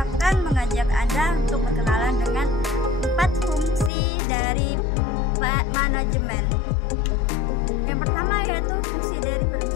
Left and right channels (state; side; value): drops out; right; at 3.9 s